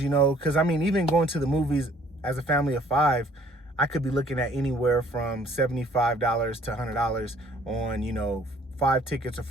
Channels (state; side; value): normal; both; correlation 0.58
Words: you know, because I mean, even going to the movies as a family of 5, I could be looking at anywhere from $75 to $100 on, you know, 5 tickets or